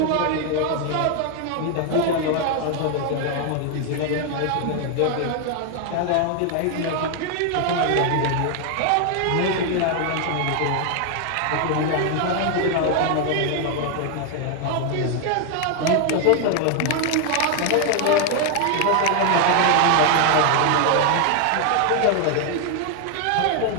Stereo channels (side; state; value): both; different; correlation 0.00